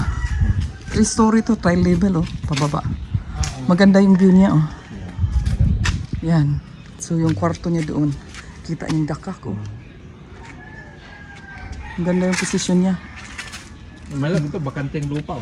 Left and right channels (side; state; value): both; identical; correlation 1.00